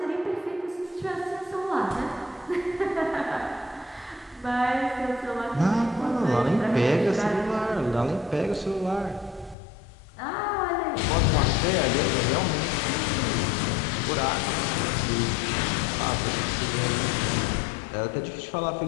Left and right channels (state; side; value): drops out; right; at 9.6 s